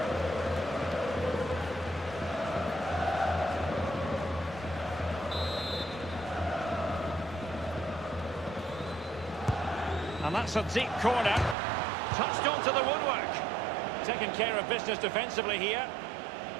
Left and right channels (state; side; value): drops out; left; at 11.6 s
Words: And that's a deep corner. Touched onto the woodwork. Taking care of business defensively here.